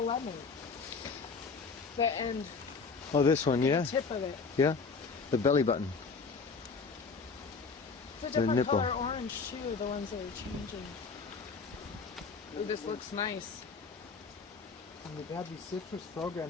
lemon. The end, Oh, this one, yeah, tip of it. yeah. The belly button. It's a The different nipple. color orange too, the ones that are changing. Ooh, this looks nice. And they've had these citrus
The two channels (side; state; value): right; quieter; 4.8 dB